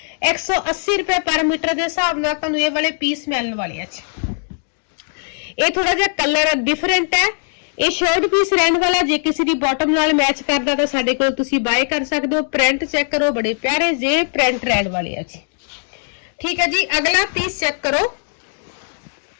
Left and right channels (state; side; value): silent; right; digital silence